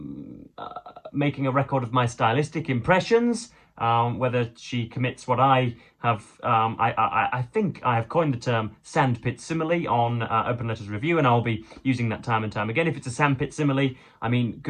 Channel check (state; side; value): identical; both; correlation 1.00